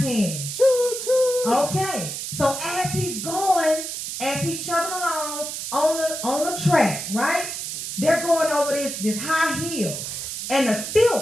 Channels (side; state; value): right; noise; hiss, 6 dB below the sound